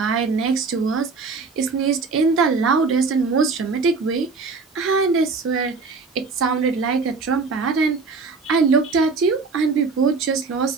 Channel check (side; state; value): left; quieter; 4.4 dB